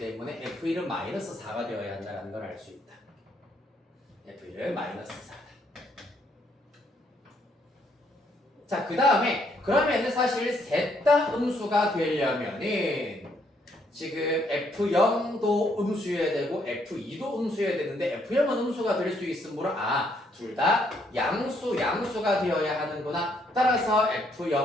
f1은 마이너스 4가 되어야 한다는 걸 알 수 있다. f1은 마이너스 4다. 자, 그 다음에 그러면은 사실 셋 다 음수가 되려면은 지금 F0도 음수여야 되고 F2도 음수여야 되는데 F0은 음수가 될 수 있으므로 둘 다 양수가 되어야 하는구나. 따라서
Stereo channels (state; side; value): normal; both; correlation 0.71